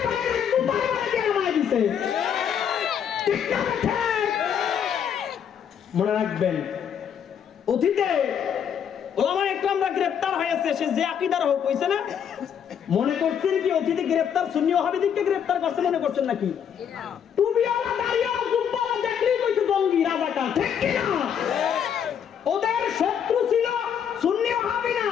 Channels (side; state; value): right; quieter; 8.3 dB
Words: পারে না, জুতার বাড়ি দিয়ে নামায় দিতে। ঠিক না? মনে রাখবেন, অতীতে ওলামায়ে ইকরামরা গ্রেফতার হয়েছে, সে যে আকীদার হোক, হইছে না? মনে করছেন কি অতীতে গ্রেফতার সুন্নি ওয়াহাবিদেরকে গ্রেফতার করছে মনে করছেন নাকি? টুপিওয়ালা দাড়িওয়ালা জুব্বাওয়ালা দেখলেই কইছে জঙ্গি রাজাকার। ঠিক কি না? ওদের শত্রু ছিল সুন্নি ওয়াহাবি না,